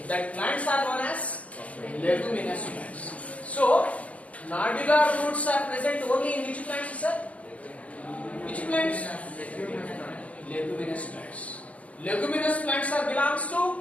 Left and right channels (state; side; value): late; right; 0.066 ms